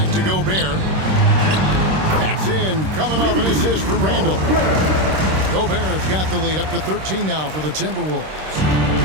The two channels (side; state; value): left; late; 26 ms